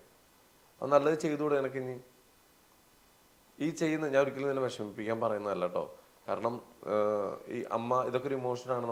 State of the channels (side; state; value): both; identical; correlation 1.00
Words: അത് നല്ലത് ചെയ്തുകൂടെ നിനക്ക്? ഇനി ഈ ചെയ്യുന്ന ഞാൻ ഒരിക്കലും നിന്നെ വിഷമിപ്പിക്കാൻ പറയുന്നതല്ല കേട്ടോ. കാരണം ഈ അമ്മ ഇതൊക്കെ ഒരു ഇമോഷനാണ്